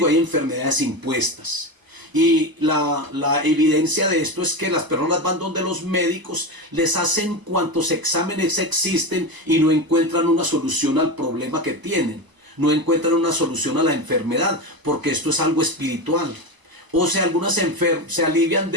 hay enfermedades impuestas. Y la evidencia de esto es que las personas van donde los médicos, les hacen cuantos exámenes existen y no encuentran una solución al problema que tienen. No encuentran una solución a la enfermedad, porque esto es algo espiritual. O sea, algunas se alivian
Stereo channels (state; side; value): late; left; 1.0 ms